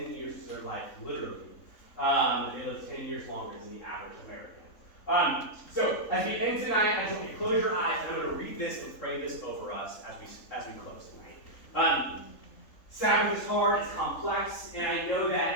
years to their life, literally. They live 10 years longer than the average American. So as we end tonight, I want you to close your eyes, and I'm going to read this and pray this over us as we close tonight. Sabbath is hard, it's complex, and I know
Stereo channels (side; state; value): right; late; 3.8 ms